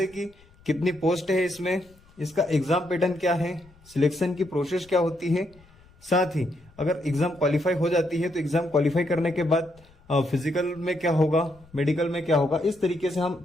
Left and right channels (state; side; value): noise; left; rumble, 28 dB below the sound